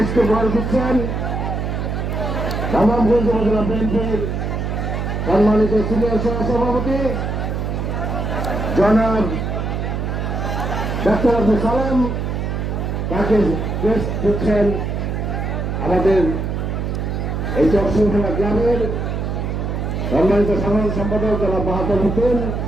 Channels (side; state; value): right; noise; hum, 2 dB below the sound